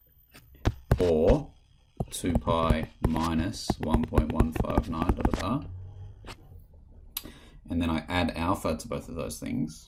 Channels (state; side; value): identical; both; correlation 1.00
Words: or 2 pi minus 1.159 blah blah blah. And then I add alpha to both of those